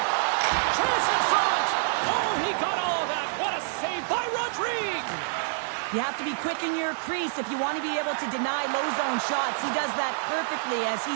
Chance in front. Oh, he got all of that. What a save by Rodrigue. You have to be quick in your crease if you want to be able to deny low zone shots. He does that perfectly as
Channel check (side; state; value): left; silent; digital silence